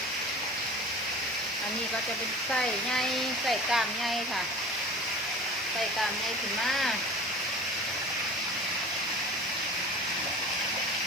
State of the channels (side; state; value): both; normal; correlation 0.39